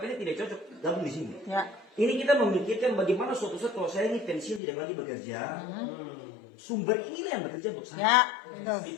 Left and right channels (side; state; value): right; drops out; at 4.6 s